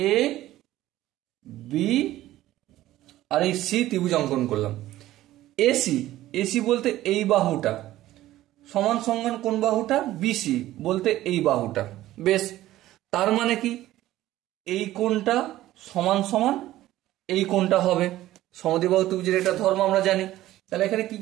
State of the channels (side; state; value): left; quieter; 15.0 dB